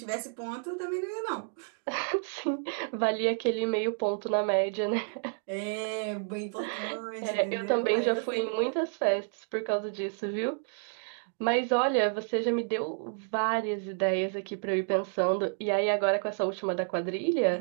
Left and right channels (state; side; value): silent; left; digital silence